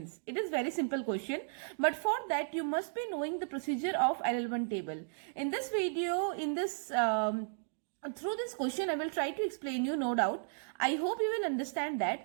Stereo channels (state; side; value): silent; left; digital silence